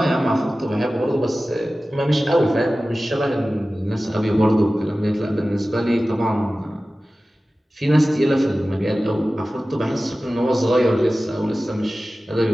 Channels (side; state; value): both; normal; correlation 0.96